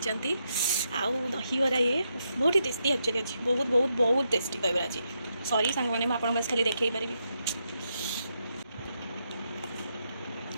आउ दहीबार ये बहुत ही टेस्टी एक्चुअली अच्छी बहुत बहुत बहुत टेस्टी दहीबार अच्छी सॉरी सांग मैंने आप खाली देखी पारि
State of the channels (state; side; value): inverted; both; correlation -0.82